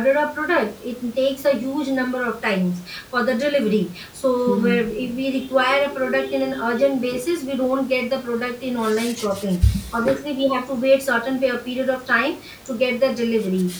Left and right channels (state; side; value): identical; both; correlation 1.00